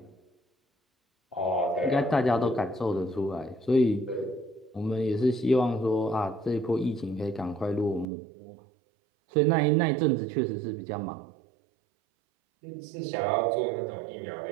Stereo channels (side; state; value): left; drops out; at 8.1 s